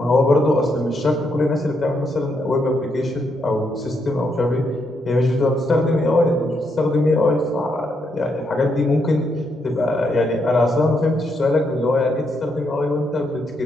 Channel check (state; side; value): normal; both; correlation 0.78